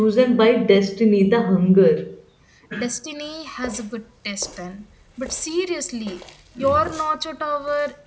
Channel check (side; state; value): both; identical; correlation 1.00